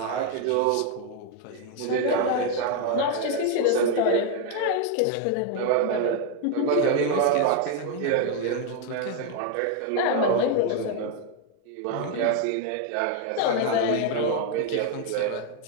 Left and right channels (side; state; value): both; different; correlation 0.01